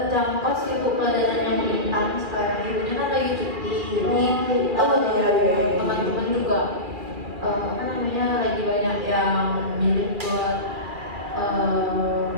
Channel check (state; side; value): late; left; 2.4 ms